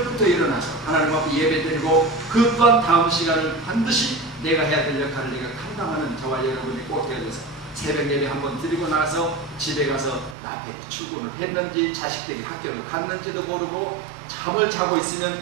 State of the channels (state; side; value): drops out; left; at 10.4 s